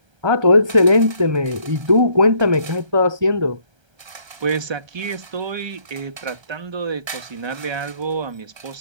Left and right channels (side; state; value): left; late; 1.3 ms